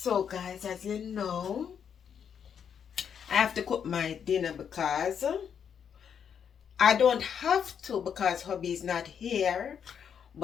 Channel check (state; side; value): quieter; right; 7.8 dB